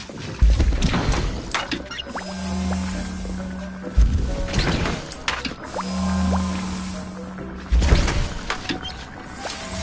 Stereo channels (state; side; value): identical; both; correlation 1.00